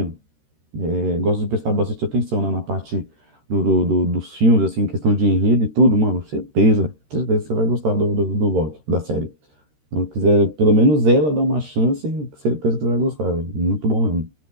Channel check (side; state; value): left; late; 13 ms